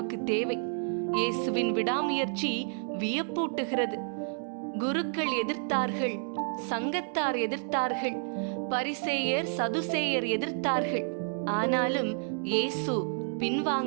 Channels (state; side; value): silent; left; 58 dB below the other